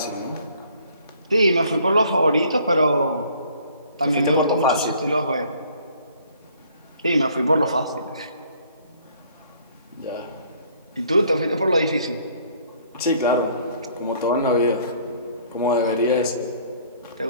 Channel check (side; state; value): both; inverted; correlation -0.58